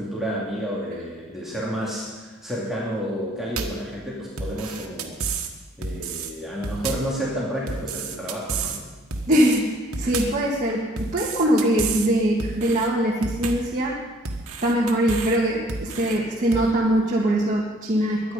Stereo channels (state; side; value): normal; both; correlation 0.60